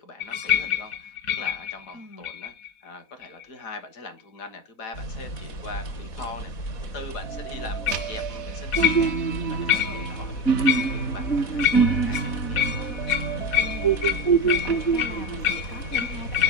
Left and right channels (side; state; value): right; late; 4.1 ms